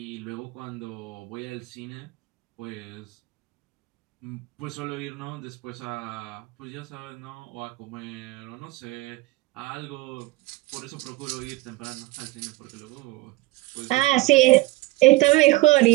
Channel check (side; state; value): left; quieter; 20.5 dB